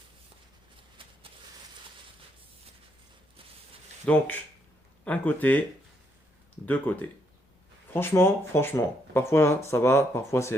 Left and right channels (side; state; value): both; normal; correlation 0.75